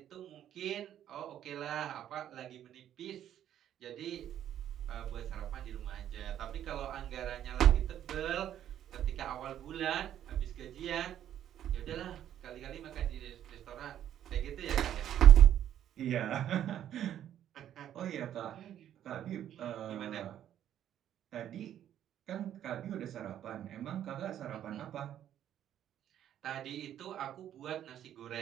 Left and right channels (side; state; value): left; quieter; 10.9 dB